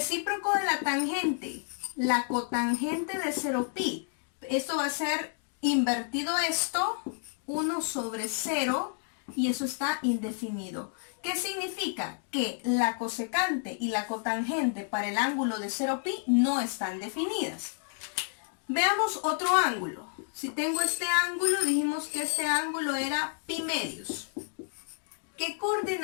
de la tangente, la cotangente de 0pi. Esto va a ser invertido esto, 1 sobre 0, y eso está indefinido. ¿Qué significa? Que la cosecante y la cotangente para el ángulo de 0pi no están definidas. Veamos otro ángulo. Si tengo este ángulo, dijimos que este ángulo era pi medios. ¿Qué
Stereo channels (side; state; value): right; silent; 58 dB below the other